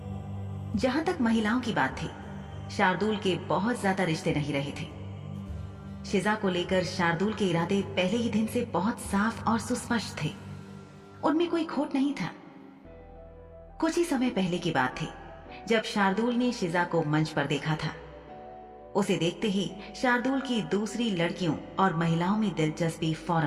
जहां तक महिलाओं की बात थी, शार्दुल के बहुत ज्यादा रिश्ते नहीं रहे थे। शिजा को लेकर शार्दुल के इरादे पहले ही दिन से बहुत साफ और सुस्पष्ट थे। उनमें कोई खोट नहीं था। कुछ ही समय पहले की बात थी जब शार्दुल ने शिजा को मंच पर देखा था। उसे देखते ही शार्दुल की दूसरी लड़कियों और महिलाओं में दिलचस्पी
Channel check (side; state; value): both; identical; correlation 1.00